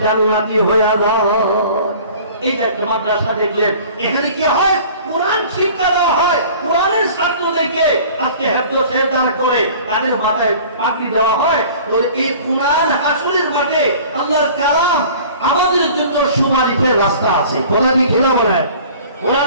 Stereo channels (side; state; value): both; inverted; correlation -0.46